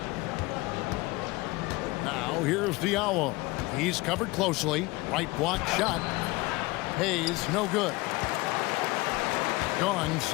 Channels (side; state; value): right; quieter; 22.2 dB